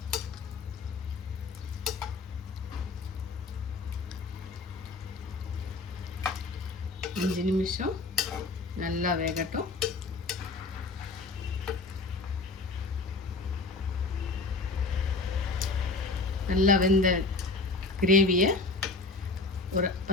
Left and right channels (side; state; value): right; quieter; 3.5 dB